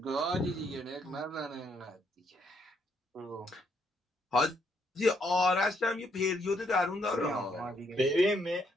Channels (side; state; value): both; normal; correlation 0.73